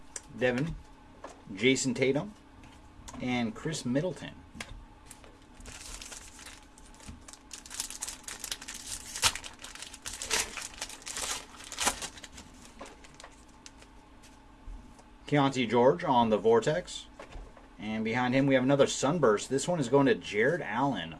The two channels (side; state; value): both; identical; correlation 1.00